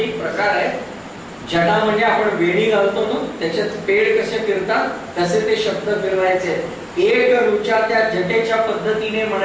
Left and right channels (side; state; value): both; identical; correlation 1.00